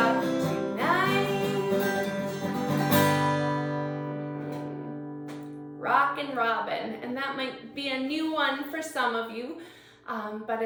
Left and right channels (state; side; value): identical; both; correlation 1.00